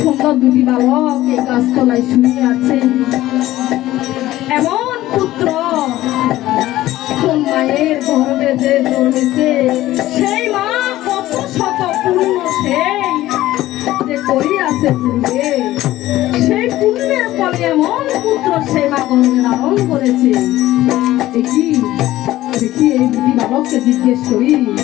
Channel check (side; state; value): right; quieter; 15.5 dB